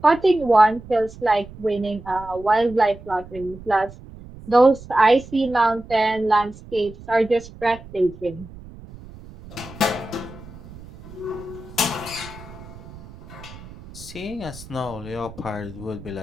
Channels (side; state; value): right; noise; rumble, 17 dB below the sound